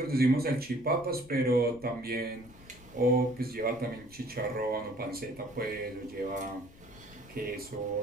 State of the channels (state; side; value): noise; left; rumble, 22 dB below the sound